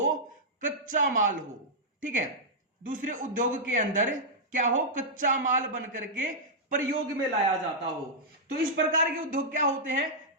कच्चा माल हो। ठीक है, दूसरे उद्योग के अंदर क्या हो, कच्चा माल बन करके प्रयोग में लाया जाता हो। तो इस प्रकार के उद्योग क्या होते हैं,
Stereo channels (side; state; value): both; normal; correlation -0.09